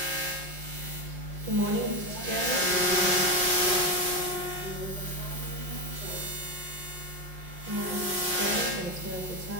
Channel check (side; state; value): left; late; 5.6 ms